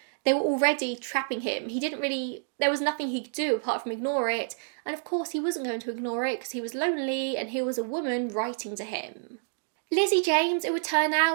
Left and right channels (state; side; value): silent; left; digital silence